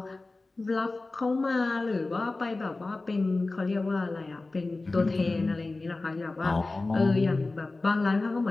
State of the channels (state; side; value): quieter; right; 3.3 dB